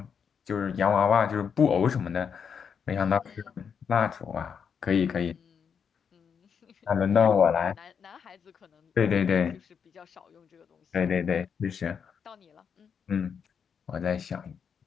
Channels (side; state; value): right; quieter; 6.9 dB